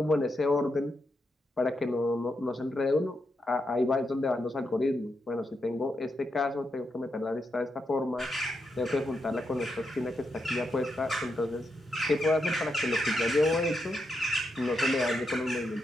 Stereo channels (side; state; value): both; normal; correlation 0.83